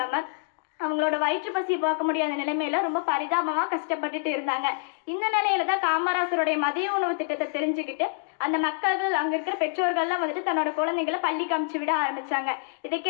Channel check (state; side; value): silent; right; digital silence